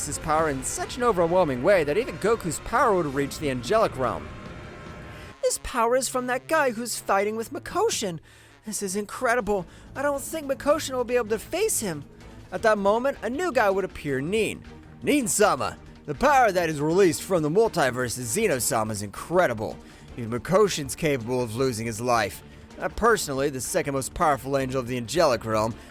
his power in such an overwhelming way that even Goku's power would reach the angelic realm. "This power is from that guy who's fighting with Mikoshin. This is incredible. I don't think Mikoshin will be able to face him." At that moment, a new guy would appear, Nin-sama. The power that is released from the multiverse of Zeno-sama is incredible. Even Mikoshin's capable of losing his life. Personally, the second most powerful angel of the angelic realm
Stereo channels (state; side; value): identical; both; correlation 1.00